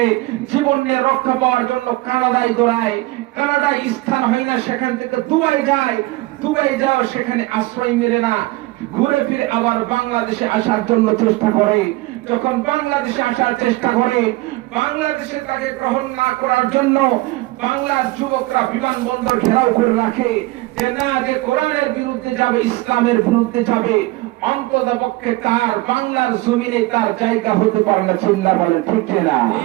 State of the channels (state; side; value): quieter; left; 20.1 dB